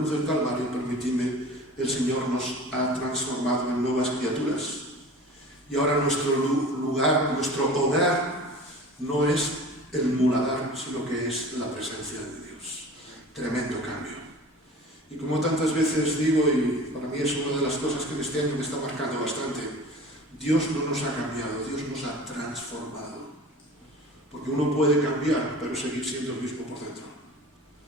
del Calvario, permitidme, el Señor nos ha transformado en nuevas criaturas. Y ahora nuestro lugar, nuestro hogar, no es el muladar, sino que es la presencia de Dios. Tremendo cambio. Y como tantas veces digo, y para mí es una de las cosas que este año me está marcando bastante, Dios no nos ha cambiado, Dios nos ha transformado. Porque uno puede cambiar, pero seguir siendo el mismo por dentro.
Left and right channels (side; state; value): both; normal; correlation 0.40